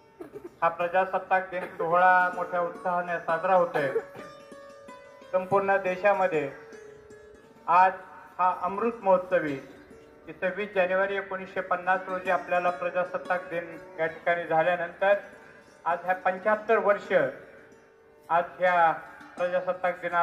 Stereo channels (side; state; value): both; identical; correlation 1.00